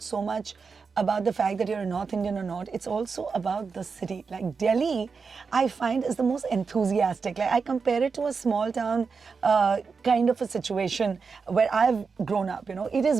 so much about the fact that you're a North Indian or not. It's also about the city. Like Delhi, I find is the most enthusiastic. Like I compare it to a small town kind of a situation where I've grown up, It is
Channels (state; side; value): quieter; left; 5.1 dB